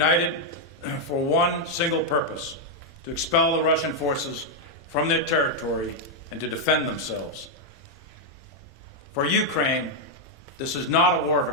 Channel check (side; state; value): both; normal; correlation -0.01